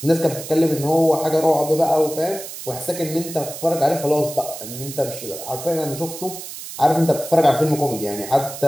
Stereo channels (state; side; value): noise; right; hiss, 11 dB below the sound